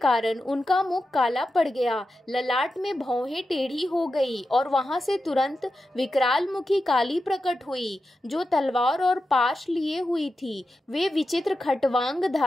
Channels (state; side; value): normal; both; correlation 0.90